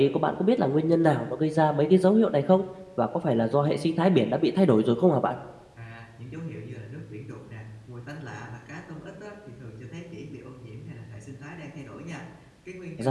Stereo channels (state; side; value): identical; both; correlation 1.00